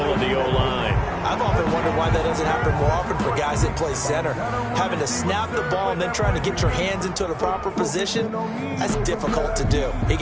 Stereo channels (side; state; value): both; identical; correlation 1.00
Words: of the O-line. I've often wondered why that doesn't happen more often for guys that play center. Having to snap the ball and then trying to get your hands into the proper position, that's difficult to do. He